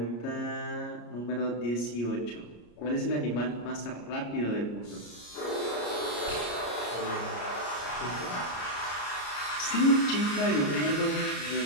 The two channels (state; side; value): late; right; 34 ms